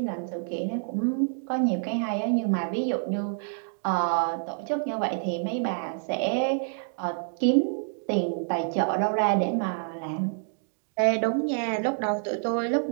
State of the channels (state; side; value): silent; left; digital silence